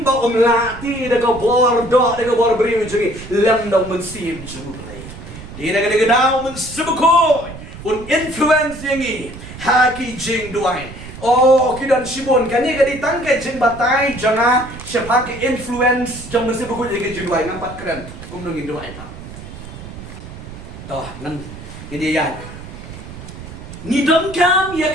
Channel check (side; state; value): right; noise; rumble, 13 dB below the sound